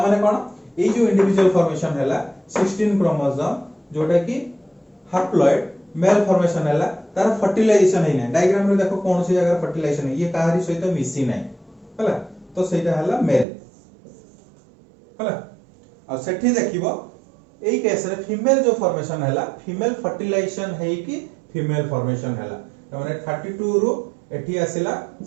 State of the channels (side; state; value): left; drops out; at 13.5 s